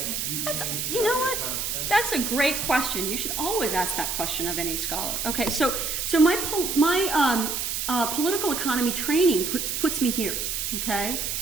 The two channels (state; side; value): noise; right; hiss, 2 dB below the sound